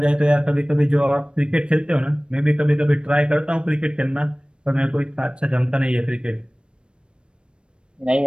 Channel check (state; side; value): late; left; 0.055 ms